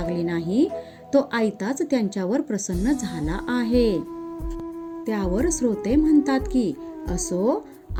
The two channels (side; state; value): both; identical; correlation 1.00